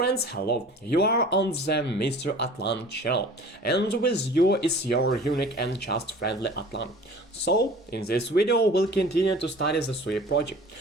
hello, you are on the Mr.Atlant channel, and with you is your unique and just friendly Atlant. So, in this video we'll continue to study the SUI project.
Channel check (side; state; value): both; normal; correlation 0.44